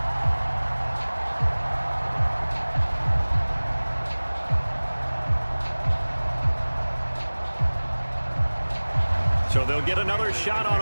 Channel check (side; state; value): both; inverted; correlation -1.00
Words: So they'll get another shot on